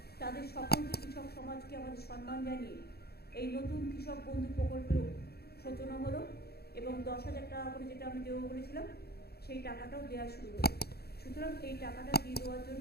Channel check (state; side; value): late; right; 0.46 ms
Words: তাদের সকলকে, কৃষক সমাজকে আমাদের সম্মান জানিয়ে এই নতুন কৃষক বন্ধু প্রকল্পেরও সূচনা হলো এবং 10,000 টাকা করে যেটা আমি দেবো বলেছিলাম সেই টাকাটাও দেওয়া শুরু হলো। সুতরাং এই টাকাটা দিয়ে দেওয়ার জন্য